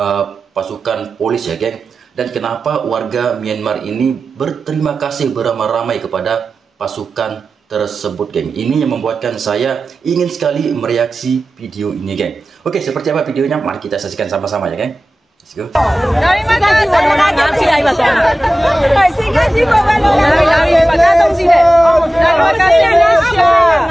pasukan polis, ya, geng. Dan kenapa warga Myanmar ini berterima kasih beramai-ramai kepada pasukan tersebut, geng. Ini yang membuatkan saya ingin sekali mereaksi video ini, geng. Oke, seperti apa videonya? Mari kita saksikan sama-sama, ya, geng. Let's go. Terima kasih Malaysia.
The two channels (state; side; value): normal; both; correlation 0.95